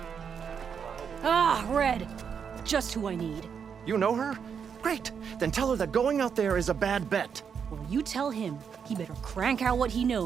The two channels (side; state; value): left; quieter; 6.9 dB